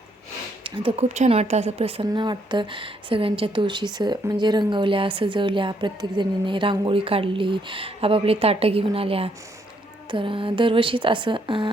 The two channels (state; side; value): normal; both; correlation 0.72